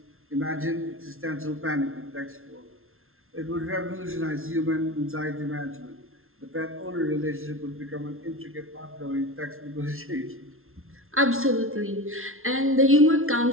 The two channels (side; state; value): left; late; 0.61 ms